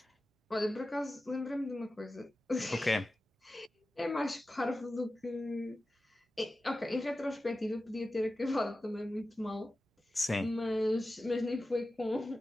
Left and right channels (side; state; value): both; normal; correlation 0.94